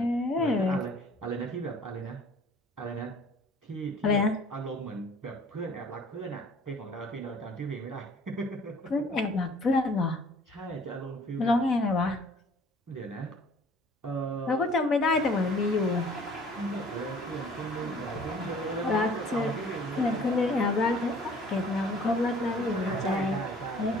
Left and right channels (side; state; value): both; normal; correlation 0.53